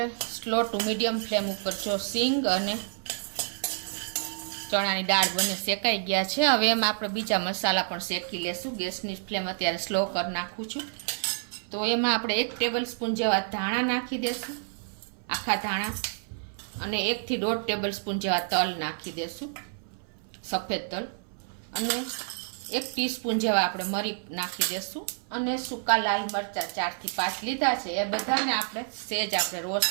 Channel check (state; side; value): silent; left; 58 dB below the other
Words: સ્લો ટુ મીડિયમ ફ્લેમ ઉપર જો સિંગ અને ચણાની દાળ બંને શેકાઈ ગયા છે। હવે એમાં આપણે બીજા મસાલા પણ શેકી લેશું। ગેસની ફ્લેમ અત્યારે સ્લો કરી નાખું છું। તો એમાં આપણે 1 ટેબલ સ્પૂન જેવા ધાણા નાખી દેશું, આખા ધાણા, અને 1 થી 1.5 ટેબલ સ્પૂન જેવા તલ નાખી દેશું, સફેદ તલ, અને 1 ટીસ્પૂન જેવા આપણે મરી નાખી દેશું, અને સૂકા લાલ મરચાં 4 થી 5 લીધા છે। એ બધાને આપણે સેજ આપણે